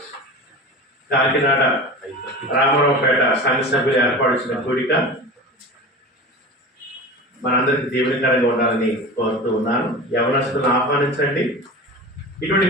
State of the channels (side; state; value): both; normal; correlation 0.32